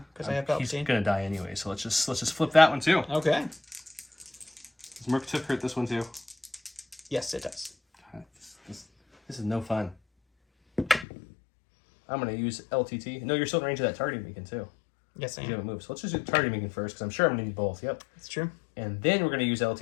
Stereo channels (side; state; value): right; drops out; at 11.1 s